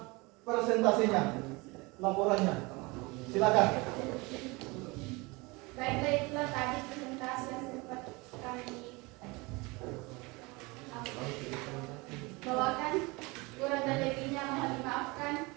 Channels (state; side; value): quieter; left; 25.2 dB